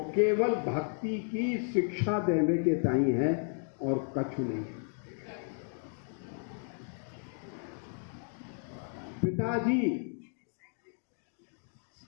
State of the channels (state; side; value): silent; right; 56 dB below the other